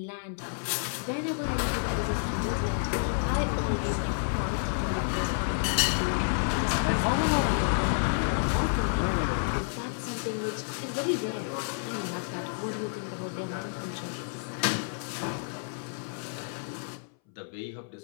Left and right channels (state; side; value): silent; right; 58 dB below the other